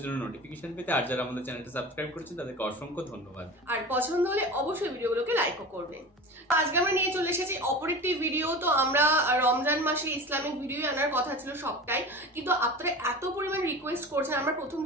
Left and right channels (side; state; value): both; normal; correlation 0.33